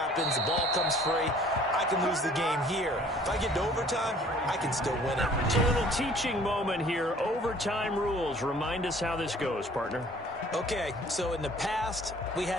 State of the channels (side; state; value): both; normal; correlation 0.54